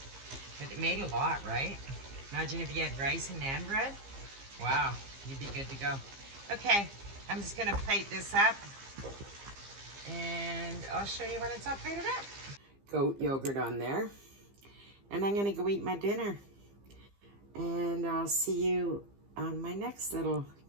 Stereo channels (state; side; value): late; left; 15 ms